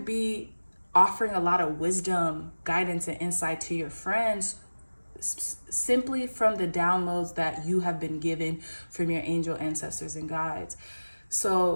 be offering a lot of wisdom, guidance, and insight to your friends simply from the downloads that you have been given from your angel, ancestors, and guides.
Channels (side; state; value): both; inverted; correlation -1.00